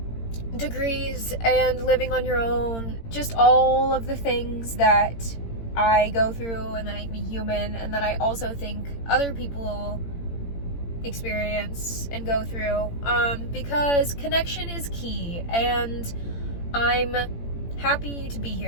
degrees and living on your own, just all of the things that I go through and that make me human, and that I also think other people experience and go through, because connection is key, and I'm happy to be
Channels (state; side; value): late; right; 18 ms